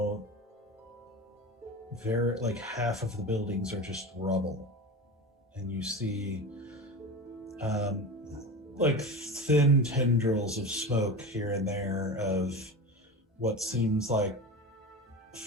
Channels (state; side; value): normal; both; correlation 0.27